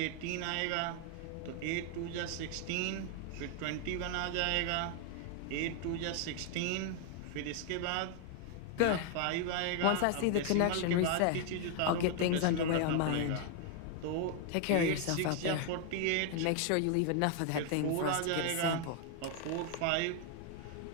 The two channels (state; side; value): different; both; correlation 0.00